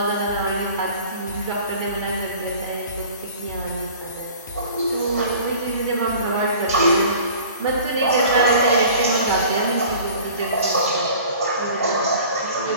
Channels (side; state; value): both; inverted; correlation -0.45